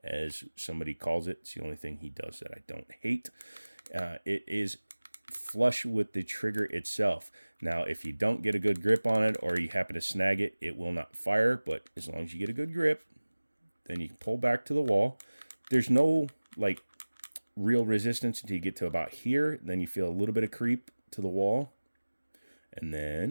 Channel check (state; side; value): inverted; both; correlation -1.00